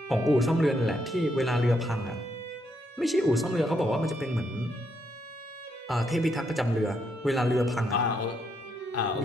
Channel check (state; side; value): normal; both; correlation 0.76